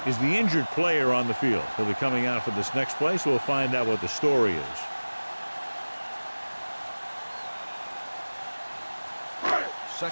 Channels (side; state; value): both; inverted; correlation -1.00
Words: is the injured player on the field. He'll be coming out for this next play, so we'll find out what the story is.